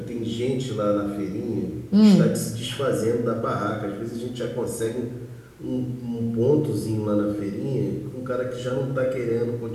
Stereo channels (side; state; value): both; identical; correlation 1.00